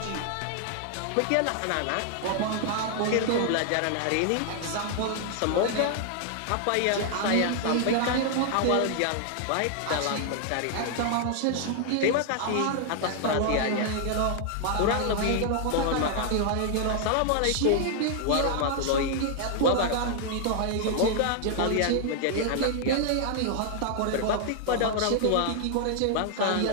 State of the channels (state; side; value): different; both; correlation 0.00